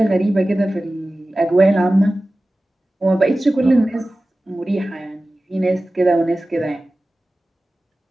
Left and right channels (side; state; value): both; normal; correlation 0.96